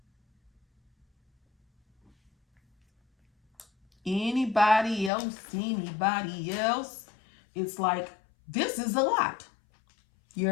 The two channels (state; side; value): drops out; right; at 5.1 s